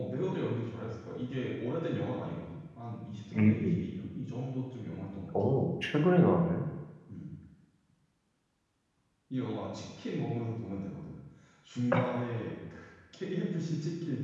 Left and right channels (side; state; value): both; identical; correlation 1.00